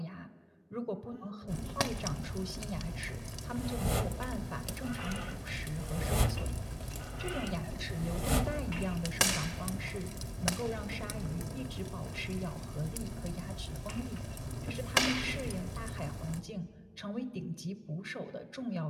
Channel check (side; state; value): both; identical; correlation 1.00